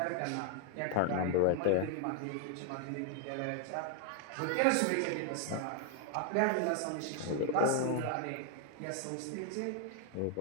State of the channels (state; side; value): different; both; correlation 0.00